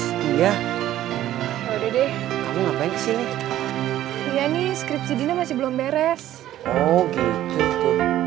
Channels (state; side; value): quieter; left; 13.1 dB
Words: Iya. Ya udah deh. Kamu ngapain kesini? Iya nih, skripsi Dina masih belum beres. Oh gitu tuh.